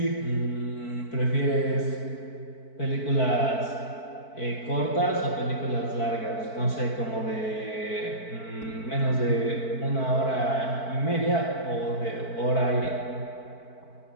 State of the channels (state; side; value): late; right; 4.5 ms